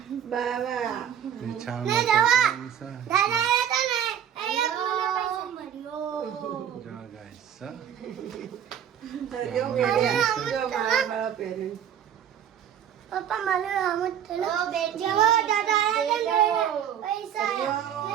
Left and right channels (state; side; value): quieter; left; 9.4 dB